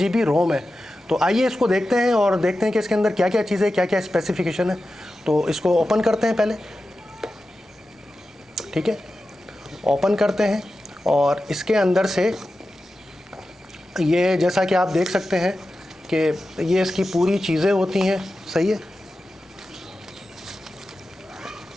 रोम है। तो आइए इसको देखते हैं और देखते हैं कि इसके अंदर क्या क्या चीज़ें, क्या क्या स्पेसिफिकेशन है। तो इसको ओपन करते हैं पहले, ठीक है। ओपन करते हैं और इसके अंदर से ये जैसा कि आप देख सकते हैं कि ये इसकी पूरी चीज़ें होती हैं, सही है।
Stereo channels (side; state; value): both; normal; correlation 0.93